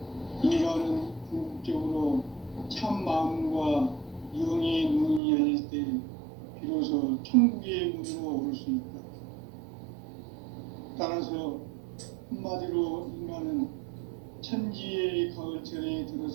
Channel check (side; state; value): left; drops out; at 5.2 s